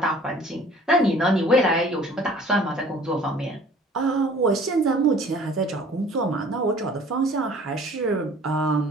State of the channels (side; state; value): both; normal; correlation 0.50